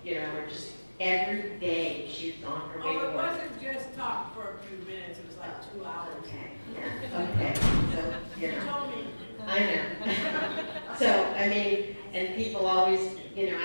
you know, or just every day she was on her way to work. Oh, it wasn't just talk for a few minutes, it was like 2 hours. Okay, yeah, okay, so, you She know. told me. I know. So, I mean, and people always, you know,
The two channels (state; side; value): inverted; both; correlation -1.00